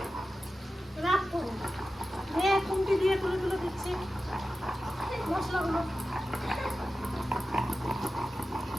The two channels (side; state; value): both; normal; correlation 0.93